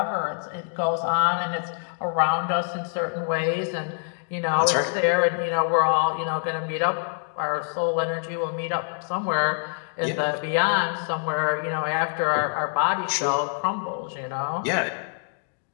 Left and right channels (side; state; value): right; silent; 61 dB below the other